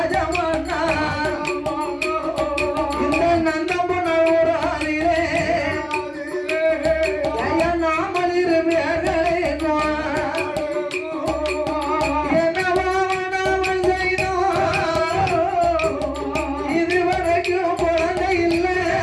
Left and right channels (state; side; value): identical; both; correlation 1.00